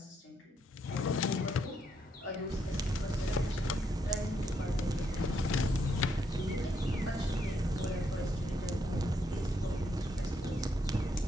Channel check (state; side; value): normal; both; correlation 0.76